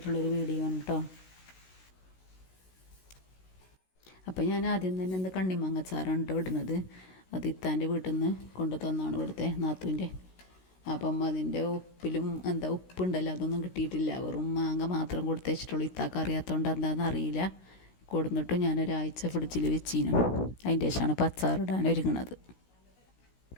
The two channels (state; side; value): late; right; 16 ms